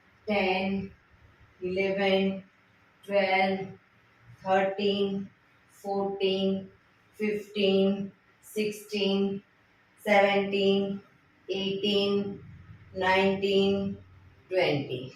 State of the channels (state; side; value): identical; both; correlation 1.00